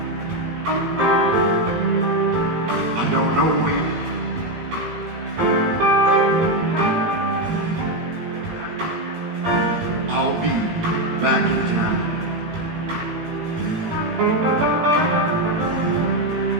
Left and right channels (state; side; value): late; left; 18 ms